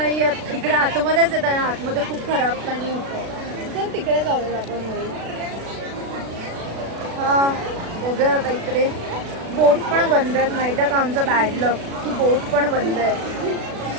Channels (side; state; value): left; late; 36 ms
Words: इकडे आतमध्येच येत आणि आतमध्ये खूप खराब पाणी होतं. चल तिकडे जाऊया आपण. हा बघूया आता. इकडे बोट पण बंद आहेत. माहिती आहे का आमचं बॅड लक की बोट पण बंद आहे.